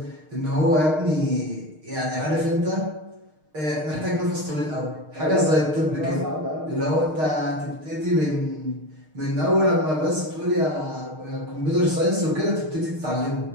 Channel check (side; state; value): left; late; 6.5 ms